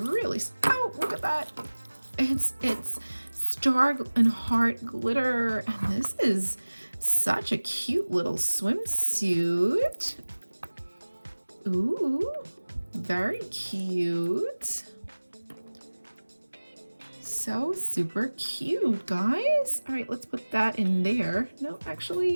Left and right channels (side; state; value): both; inverted; correlation -1.00